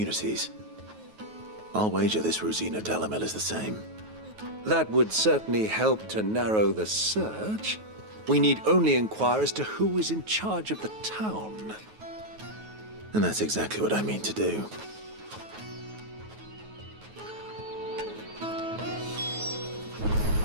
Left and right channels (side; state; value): left; late; 9.3 ms